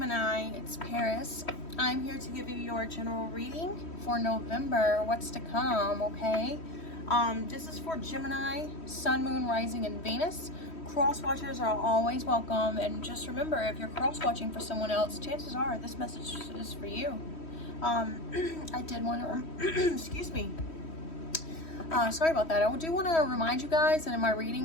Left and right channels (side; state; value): right; late; 3.1 ms